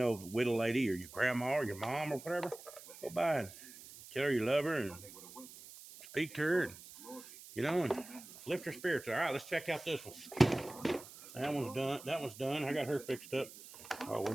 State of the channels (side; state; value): right; noise; hiss, 16 dB below the sound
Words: widow lady or your grandma or your mom or whatever, go by and tell her you love her and speak to her, and you know, and lift her spirits. All right, let's check out this one. That one's done. That one's done. I got her fixed up. Oh, we